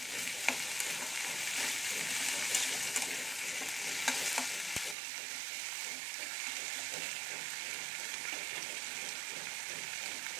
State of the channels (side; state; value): left; drops out; at 5.0 s